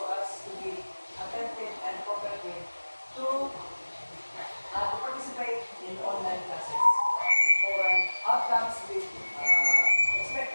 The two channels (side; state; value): both; inverted; correlation -1.00